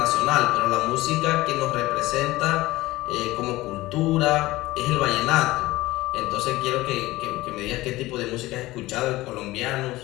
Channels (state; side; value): quieter; right; 18.3 dB